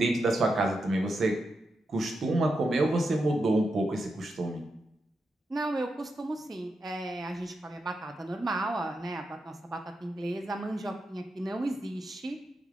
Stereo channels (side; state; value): both; normal; correlation 0.86